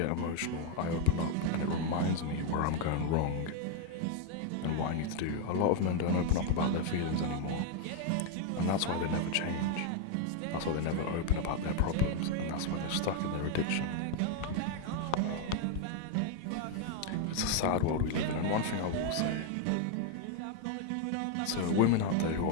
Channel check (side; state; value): both; different; correlation 0.00